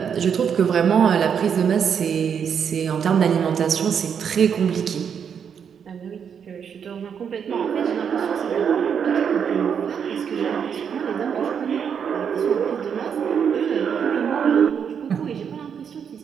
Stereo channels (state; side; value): quieter; left; 7.4 dB